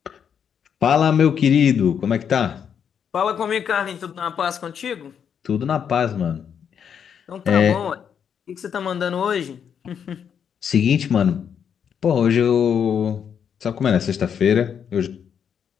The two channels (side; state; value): right; quieter; 7.8 dB